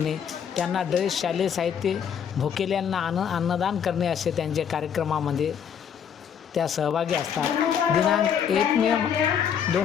त्यांना ड्रेस, शालेय साहित्य, भुकेल्यांना अन्नदान करणे असे त्यांचे कार्यक्रमामध्ये त्या सहभागी असतात. दिनांक 1 मे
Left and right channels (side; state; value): right; quieter; 8.0 dB